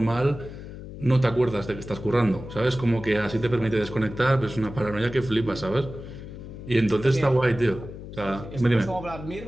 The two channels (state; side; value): noise; left; hum, 12 dB below the sound